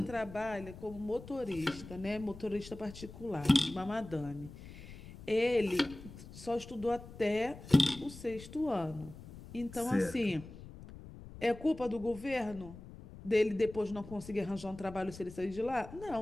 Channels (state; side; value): noise; left; rumble, 15 dB below the sound